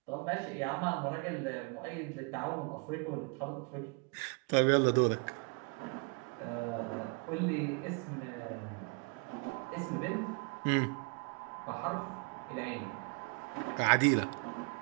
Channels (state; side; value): quieter; left; 32.8 dB